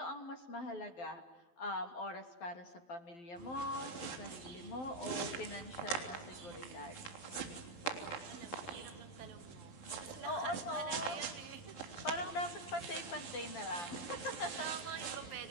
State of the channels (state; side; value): late; right; 12 ms